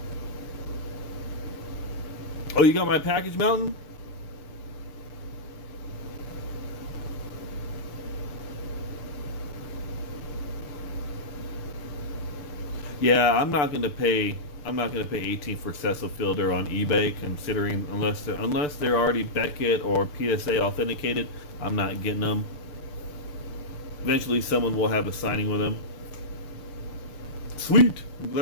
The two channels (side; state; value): right; late; 6.8 ms